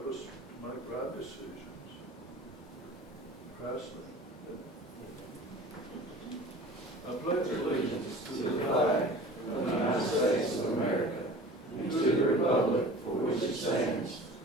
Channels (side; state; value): both; normal; correlation 0.42